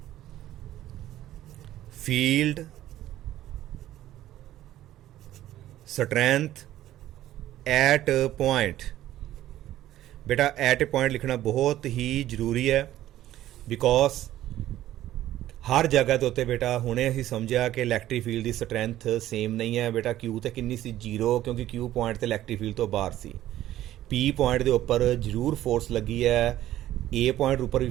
field strength at a point। बेटा eight ए point लिखना बहुत ही ਜ਼ਰੂਰੀ ਹੈ because ਹਰ ਜਗ੍ਹਾ ਦੇ ਉੱਤੇ ਬੇਟਾ ਹੁਣੇ ਅਸੀਂ ਸਮਝਿਆ ਕਿ ਇਲੈਕਟ੍ਰਿਕ ਫੀਲਡ ਦੀ ਸਟਰੈਂਥ ਸੇਮ ਨਹੀਂ ਹੈ ਬੇਟਾ। ਕਿਊ ਤੇ ਕਿੰਨੀ ਸੀ 0 ਕਿਉਂਕਿ ਕਿਊ ਪੁਆਇੰਟ ਤੇ ਇਲੈਕਟ੍ਰਿਕ ਫੀਲਡ ਤੋਂ ਬਾਹਰ ਸੀ। ਪੀ ਪੁਆਇੰਟ ਦੇ ਉੱਪਰ ਜ਼ਰੂਰ ਫੋਰਸ ਲੱਗੀ ਹੈ, ਏ ਪੁਆਇੰਟ ਉੱਪਰ ਵੀ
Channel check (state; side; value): quieter; left; 13.6 dB